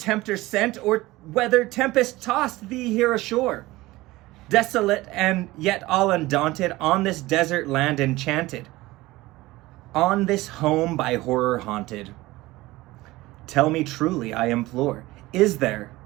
sent, or whether tempest tossed thee here ashore, desolate and yet all undaunted, on this desert land enchanted, on this home by horror haunted. Tell me truly, I implore, is there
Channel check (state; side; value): quieter; left; 19.1 dB